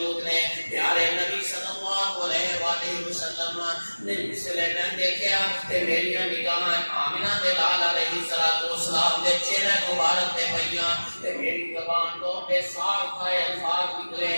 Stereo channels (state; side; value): inverted; both; correlation -1.00